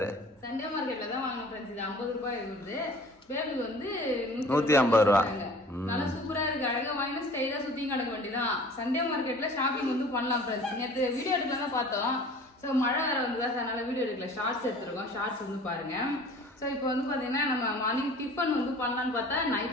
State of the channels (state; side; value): normal; both; correlation 0.46